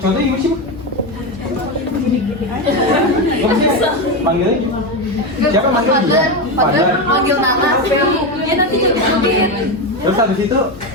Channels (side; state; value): both; normal; correlation 0.13